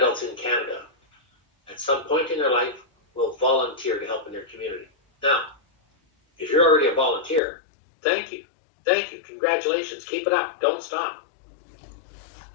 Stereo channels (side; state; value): right; drops out; at 7.4 s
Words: in Canada, at some point in their life, will volunteer to help in their community. Now, if you're already a volunteer, thank you, congratulations, keep it up, don't stop.